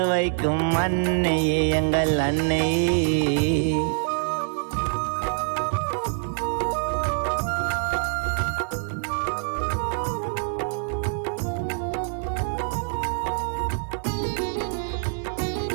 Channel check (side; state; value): left; silent; digital silence